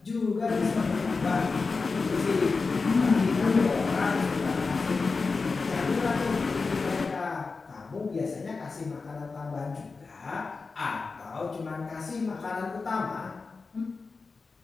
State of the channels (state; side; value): quieter; right; 4.3 dB